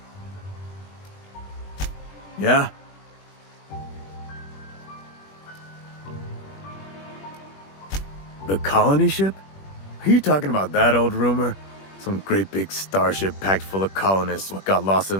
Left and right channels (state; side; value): late; right; 21 ms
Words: Yeah? The colony ship? Are you talking about that old rumor? Some great big starship packed full of colonists what got lost in